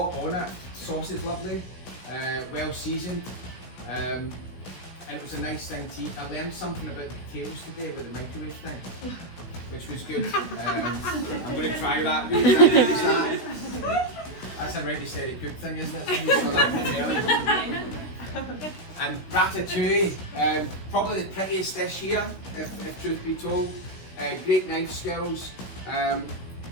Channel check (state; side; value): late; right; 16 ms